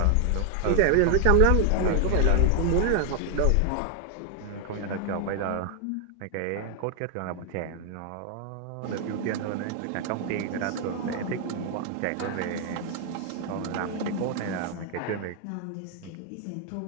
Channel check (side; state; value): both; different; correlation 0.00